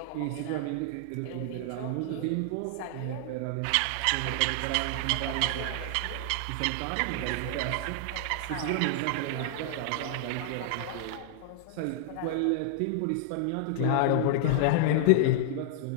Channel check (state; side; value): different; both; correlation 0.00